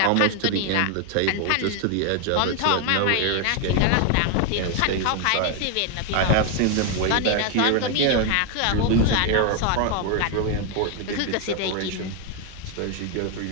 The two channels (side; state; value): both; different; correlation 0.01